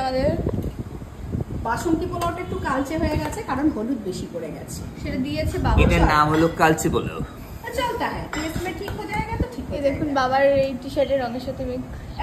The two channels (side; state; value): both; identical; correlation 1.00